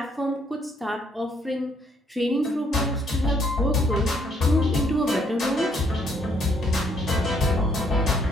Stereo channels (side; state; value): both; normal; correlation 0.68